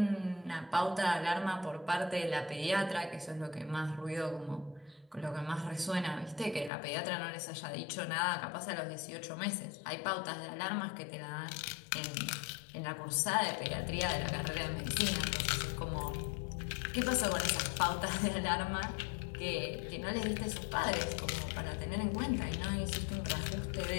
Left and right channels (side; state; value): right; drops out; at 6.7 s